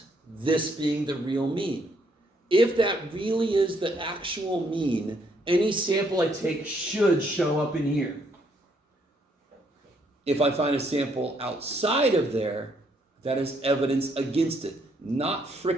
this being the real mean. If that really is the actual mean, any sample I take should show up in here. If I find a sample outside of there, that is evidence against it. Not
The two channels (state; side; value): normal; both; correlation 0.71